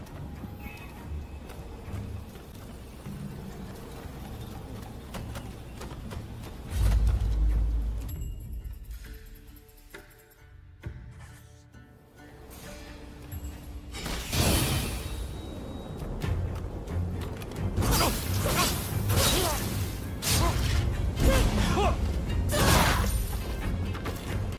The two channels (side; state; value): both; identical; correlation 1.00